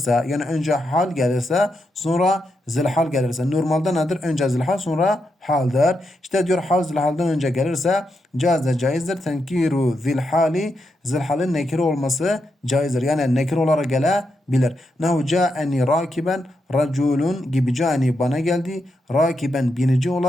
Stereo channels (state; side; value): normal; both; correlation 0.84